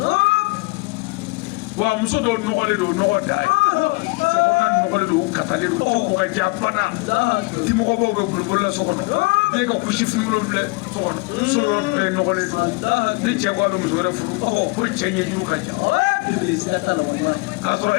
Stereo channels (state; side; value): quieter; right; 26.7 dB